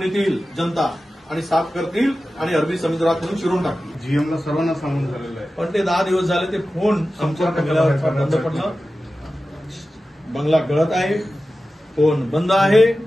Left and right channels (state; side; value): normal; both; correlation 0.94